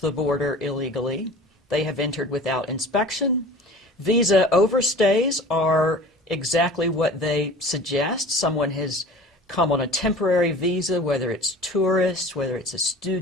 the border illegally. They have entered without inspection. Visa overstays are exactly what they suggest. Someone has come on a temporary visa, whether it's tourist, whether it's a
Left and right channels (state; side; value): normal; both; correlation 0.41